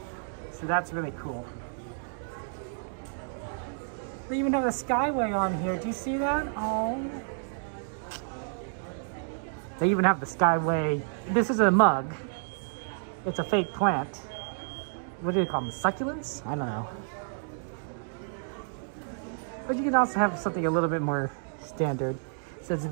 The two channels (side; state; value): left; silent; digital silence